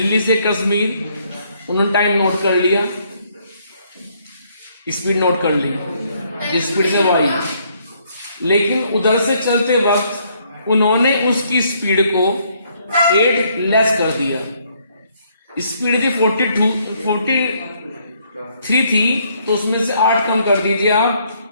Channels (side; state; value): both; inverted; correlation -0.69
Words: से कश्मीर, उन्होंने टाइम नोट कर लिया, स्पीड नोट कर ली जिस स्पीड से वो आई, लेकिन उधर से चलते वक्त उन्होंने उसकी स्पीड को 8 लेस कर दिया। स्पीड थी 43 थी, तो उसमें से 8 कम कर दीजिए आप,